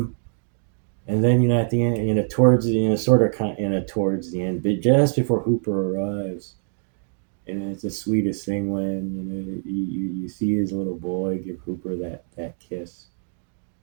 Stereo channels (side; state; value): left; silent; digital silence